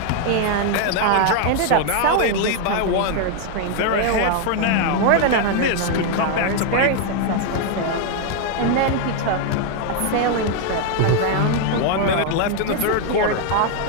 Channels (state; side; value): different; both; correlation 0.00